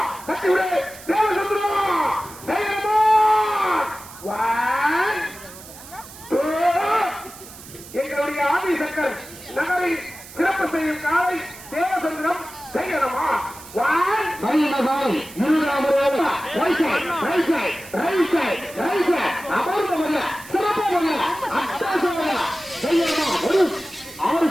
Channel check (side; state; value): right; noise; hiss, 17 dB below the sound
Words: கட்டி விடு எங்களுடைய ஆதிசங்கர் நகரில் சிறப்பு செய்யும் காலை தேவசந்திரம் செய்யணுமா சிறப்பு